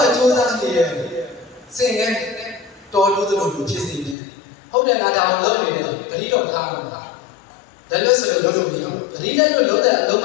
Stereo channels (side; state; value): right; drops out; at 4.2 s